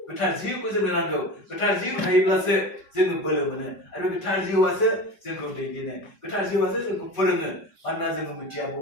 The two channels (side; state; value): right; late; 5.1 ms